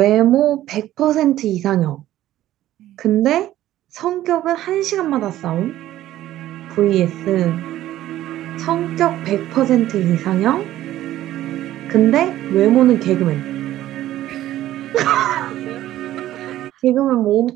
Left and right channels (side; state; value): left; quieter; 13.9 dB